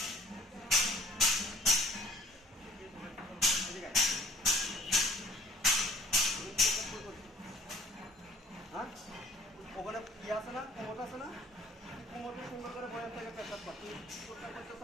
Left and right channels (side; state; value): both; normal; correlation 0.53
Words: ওখানে ইয়ে আছে না, কোমর আছে না, কোমরকে সুন্দর করে বয়ে থেকে পেশাব কর। তুই